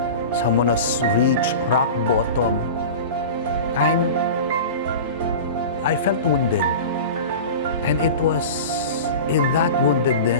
someone who's reached rock bottom, I felt wounded. And it was in that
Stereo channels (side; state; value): both; inverted; correlation -0.32